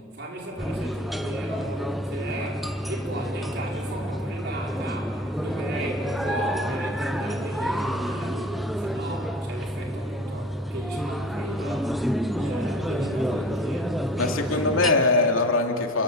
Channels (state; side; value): normal; both; correlation 0.40